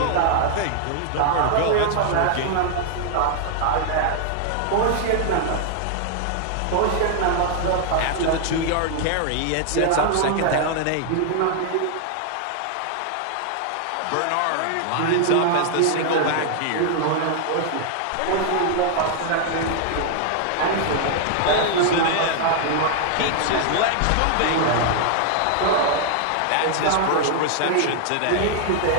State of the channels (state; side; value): different; both; correlation 0.00